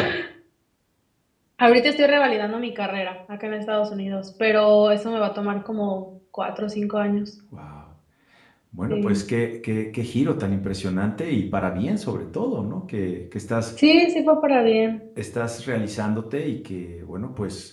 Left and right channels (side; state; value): both; identical; correlation 1.00